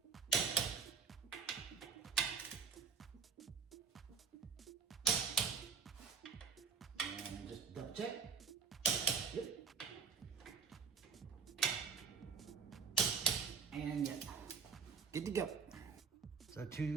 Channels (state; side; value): quieter; left; 6.1 dB